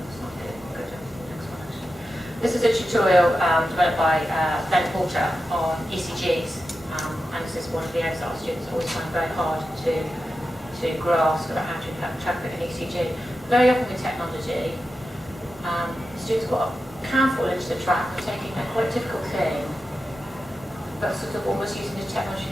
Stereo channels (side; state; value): both; normal; correlation 0.91